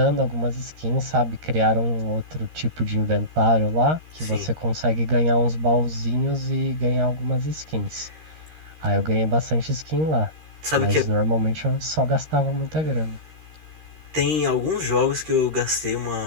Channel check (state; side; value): late; left; 13 ms